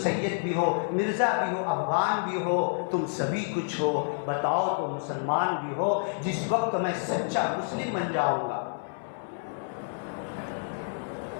سید بھی ہو, مرزا بھی ہو, افغان بھی ہو, تم سبھی کچھ ہو, بتاؤ تو مسلمان بھی ہو. جس وقت میں سچا مسلم بن جاؤں گا,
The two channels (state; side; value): silent; right; 59 dB below the other